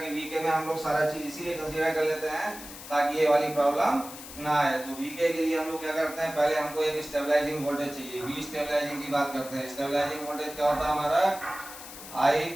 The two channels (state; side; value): noise; left; hiss, 13 dB below the sound